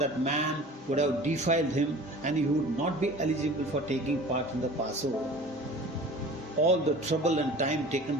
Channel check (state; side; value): normal; both; correlation 0.42